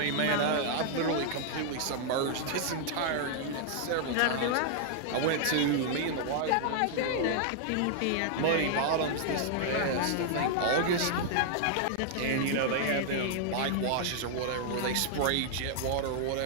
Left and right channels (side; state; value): both; different; correlation 0.00